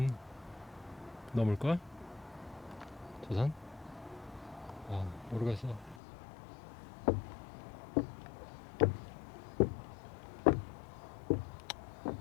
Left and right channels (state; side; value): drops out; right; at 6.0 s